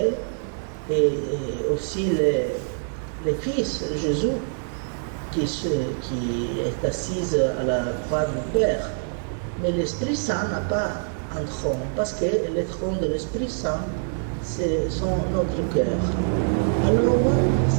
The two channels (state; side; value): silent; left; digital silence